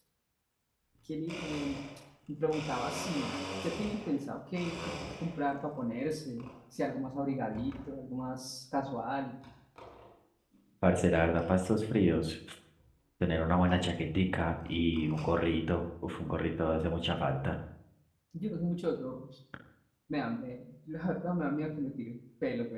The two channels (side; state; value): both; identical; correlation 1.00